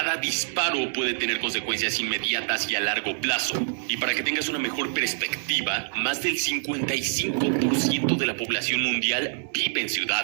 disparo puede tener consecuencias inmediatas y a largo plazo. Y para que tengas una mejor perspectiva, más del 55% de la población mundial vive en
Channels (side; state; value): left; silent; 56 dB below the other